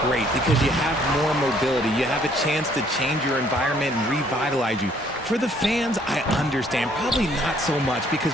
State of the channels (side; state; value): both; normal; correlation 0.63